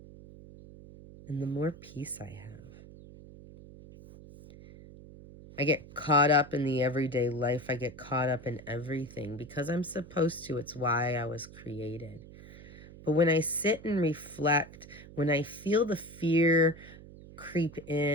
and the more peace I have. I get caught up in the everyday life. I get caught up in everything because I'm supposed to. It's why I was created. But when I sit and reflect, when I feel the fear creep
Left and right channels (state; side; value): noise; right; hum, 18 dB below the sound